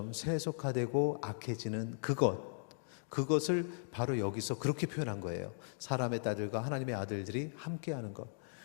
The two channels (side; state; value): right; silent; digital silence